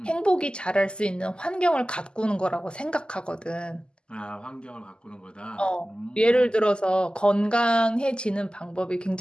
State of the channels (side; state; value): right; late; 0.048 ms